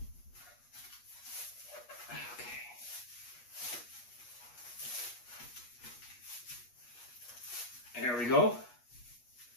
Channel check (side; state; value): right; late; 8.3 ms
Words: Okay. There we go.